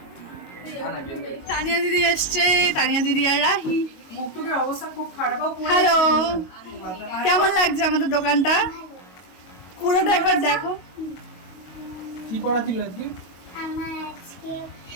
তানিয়া দিদি এসছে, তানিয়া দিদি আর রাহি। মুখটুকের অবস্থা খুব খারাপ। হ্যালো, কেমন লাগছে আমাদের দোকানটা? পুরোটা একবার দেখো। কি পড়া ছিল আজকে? আমার আজকে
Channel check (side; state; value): right; late; 22 ms